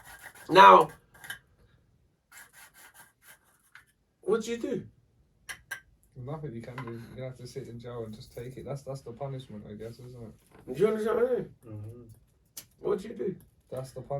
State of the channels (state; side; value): identical; both; correlation 1.00